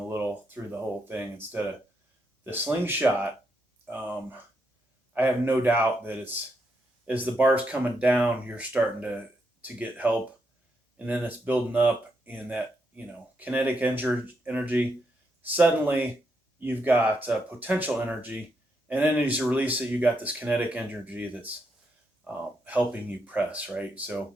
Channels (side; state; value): both; normal; correlation 0.80